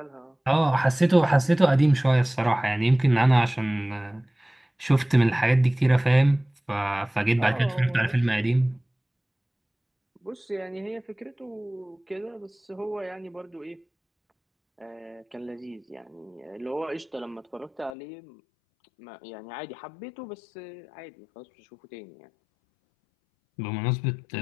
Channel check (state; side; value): drops out; right; at 17.9 s